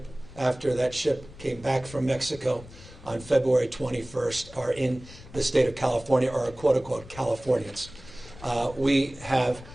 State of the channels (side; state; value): left; noise; rumble, 18 dB below the sound